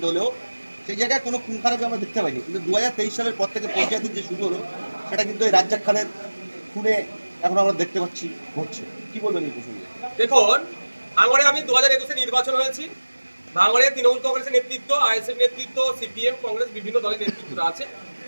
হলেও সেই জায়গায় কোনো খুন খারাপি আমরা দেখতে পাইনি। কিন্তু 2023 সালের পর থেকে পঞ্চায়েতের যে শুরু হলো সেটা কিন্তু এই রাজ্জাক খানের খুনে এখন আমরা দেখতে পাচ্ছি ঘটছে। কি বলবেন এই প্রসঙ্গে? দেখুন, ভাঙড়ে আমি 2021-এ নির্বাচন হয়েছি। ভাঙড়ে তৃণমূল কংগ্রেসের নেতৃত্ব, আইএসএফ নেতৃত্ব, সিপিএম, কংগ্রেস, বিভিন্ন দলের নেতৃত্বরা আছে।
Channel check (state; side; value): inverted; both; correlation -1.00